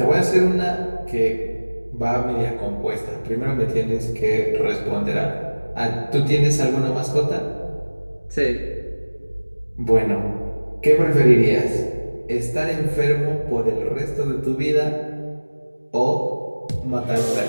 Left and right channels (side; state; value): both; inverted; correlation -1.00